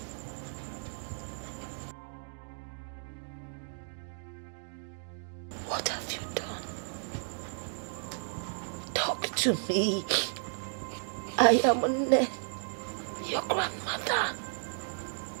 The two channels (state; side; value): silent; left; digital silence